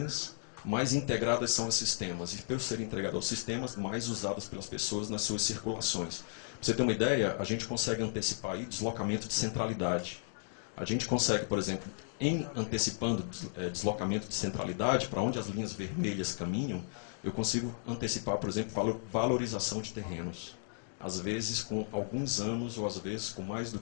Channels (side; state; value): right; silent; digital silence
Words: mais integradas são os sistemas. E por serem integrados aos sistemas, mais usados pelas pessoas nas suas circulações. Pra você ter uma ideia, a gente consegue antecipar aí deslocamento de centralidade. A gente consegue, por exemplo, antecipando deslocamento de centralidade, para onde as linhas vermelhas caminham, eu consigo antecipar, por exemplo, valorização de terrenos. às vezes com alguns anos, ou às vezes com mais do